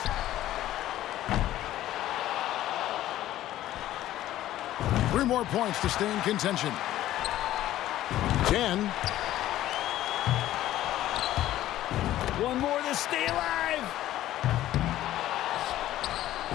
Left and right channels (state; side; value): quieter; right; 13.8 dB